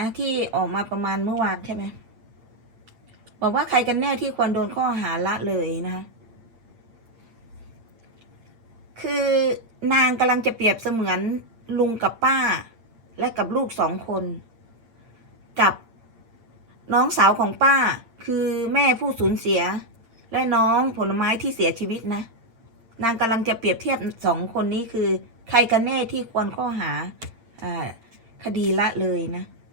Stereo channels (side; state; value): left; late; 8.8 ms